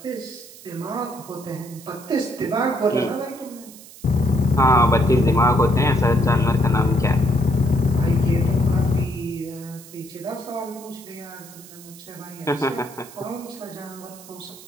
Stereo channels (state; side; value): noise; right; hiss, 19 dB below the sound